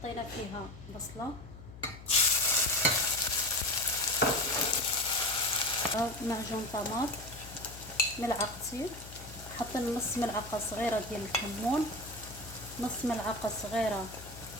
فيها بصلة، معجون طماط ملعقتين، حطينا نص ملعقة صغيرة ديال الكمون، نص ملعقة صغيرة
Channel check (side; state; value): left; noise; hum, 15 dB below the sound